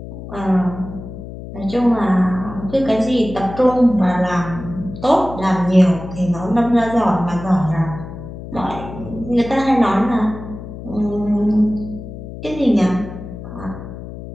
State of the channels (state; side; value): noise; left; hum, 11 dB below the sound